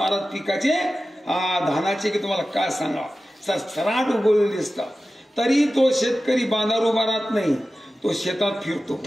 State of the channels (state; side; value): normal; both; correlation 0.95